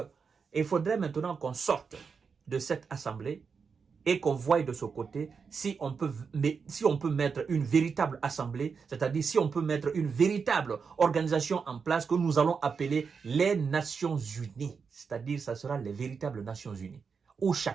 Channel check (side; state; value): left; quieter; 5.6 dB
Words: il faudrait maintenant qu'on sorte de cette assemblée et qu'on voie de ce côté si on peut mettre une véritable assemblée, c'est-à-dire si on peut mettre une véritable organisation en place que nous allons appeler les Nations Unies. C'est-à-dire ça sera les véritables Nations Unies, où